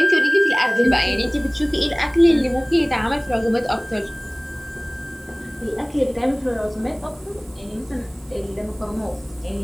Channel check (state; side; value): noise; right; hiss, 28 dB below the sound